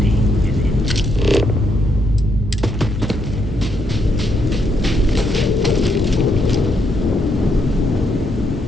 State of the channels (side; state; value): both; normal; correlation 0.76